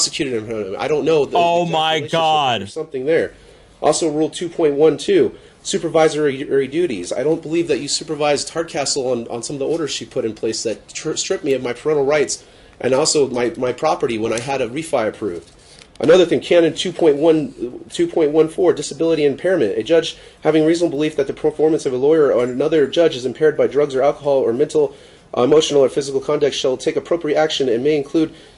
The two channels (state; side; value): identical; both; correlation 1.00